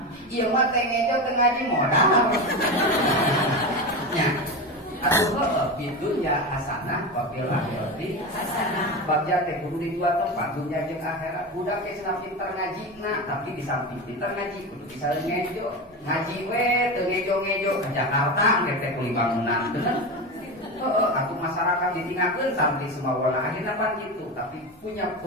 Ieu mah teh ngejo teu ngaji modal. Nya. Atuh bidunya hasanah wa fil akhirati hasanah. Bagja teh kudu di dua tempat, dunya jeung akhirat. Budak teh cenah pinter ngajina, tapi di samping pinter ngaji kudu bisa ngejo. Ngaji we teu ngejo-ngejo ka Jakarta engke teh kulit bangunan bener. Atuh masyarakat ditinggalkeun sampai semuanya akhirnya pan gitu, tapi punya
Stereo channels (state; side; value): normal; both; correlation 0.21